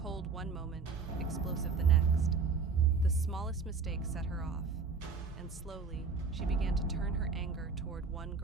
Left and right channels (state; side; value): quieter; left; 4.9 dB